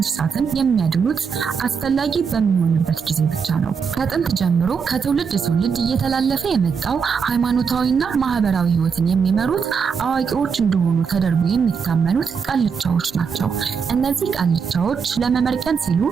የሚያድኑት አስፈላጊ በሚሆንበት ጊዜ ብቻ ነው። ከጥንት ጀምሮ ከትውልድ ትውልድ እየተላለፈ የመጣው ሃይማኖታዊና ማህበራዊ ህይወትን የሚመሩት አዋቂዎች እንደሆኑ ተደርጎ የሚታመኑት ቃልቻዎች ናቸው። እነዚህ ቃልቻዎች ለመመርቀን ሲሉ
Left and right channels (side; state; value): left; quieter; 6.1 dB